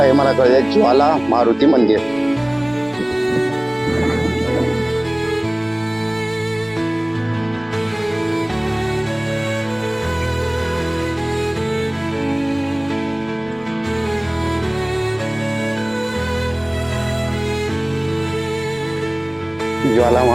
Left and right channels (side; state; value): right; noise; rumble, 27 dB below the sound